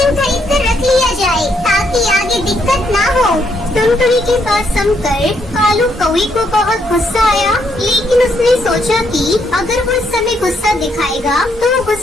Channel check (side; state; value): both; normal; correlation 0.74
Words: खरीद कर रख लिया जाए ताकि आगे दिक्कत ना हो। टुनटुनी की बात सुनकर कालू कौवे को बहुत गुस्सा आया, लेकिन उसने सोचा कि अगर वो इस समय गुस्सा दिखाएगा तो वो